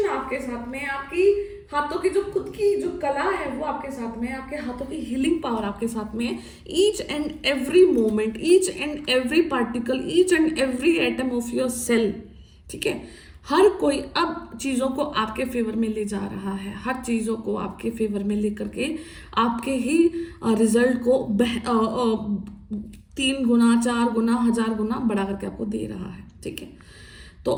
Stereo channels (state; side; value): identical; both; correlation 1.00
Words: आपके साथ में, आपकी हाथों की जो खुद की जो कला है वो आपके साथ में, आपके हाथों की हीलिंग पावर आपके साथ में है। Each and every moment, each and every particle, each and every atom of your cell, ठीक है। हर कोई अब चीज़ों को आपके फेवर में ले जा रहा है, हर चीज़ों को आपके फेवर में लेकर के आपके ही रिजल्ट को 3 गुना 4 गुना 1000 गुना बढ़ा करके आपको दे रहा है, ठीक है। तो